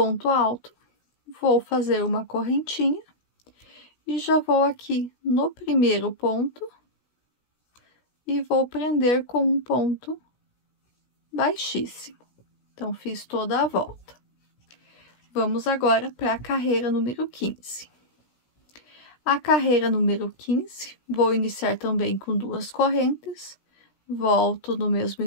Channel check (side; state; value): right; late; 16 ms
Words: alto, vou fazer uma correntinha e já vou aqui no primeiro ponto e vou prender com um ponto baixíssimo. Então, fiz toda a volta. Vamos agora para a carreira número 15. A carreira número 15, vou iniciar também com 2 correntes, volto no mesmo